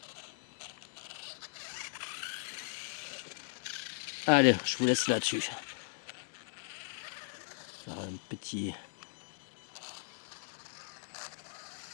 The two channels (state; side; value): silent; right; digital silence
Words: Allez, je vous laisse là-dessus. Faire un petit...